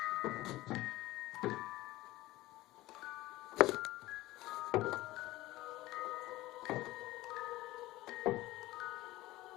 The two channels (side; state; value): right; quieter; 17.8 dB